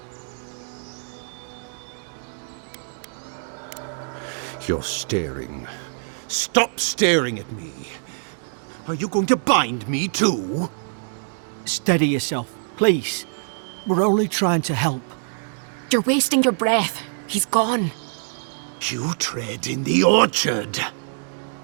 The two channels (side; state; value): left; silent; digital silence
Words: You're staring. Stop staring at me. Are you going to bind me too? Steady yourself, please. We're only trying to help. You're wasting your breath. He's gone. You tread in the orchard.